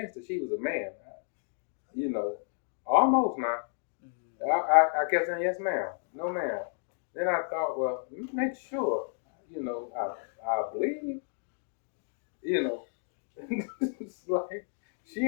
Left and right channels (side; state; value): right; silent; 57 dB below the other